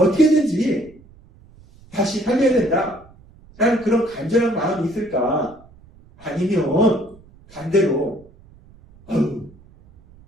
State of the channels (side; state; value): right; noise; rumble, 26 dB below the sound